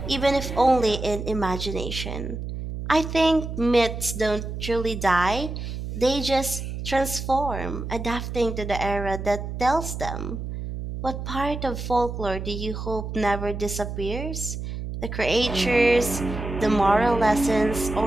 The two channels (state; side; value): noise; right; hum, 6 dB below the sound